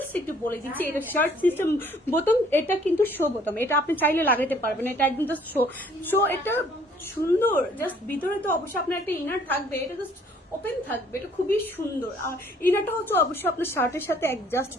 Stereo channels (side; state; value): both; normal; correlation 0.59